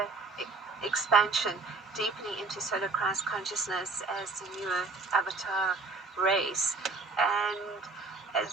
expansion, deepening into solar Christ consciousness as the new avatar race. And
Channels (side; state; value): left; quieter; 3.9 dB